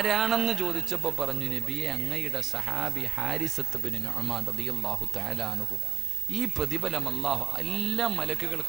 ചോദിച്ചപ്പോ പറഞ്ഞു, നബിയെ, അങ്ങയുടെ സഹാബി ഹാരിസത്ത് ബിൻ നുഅ്മാൻ റളിയല്ലാഹു തആല അൻഹു. ഈ പ്രതിഫലം അല്ലാഹു എല്ലാ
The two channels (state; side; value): quieter; left; 10.6 dB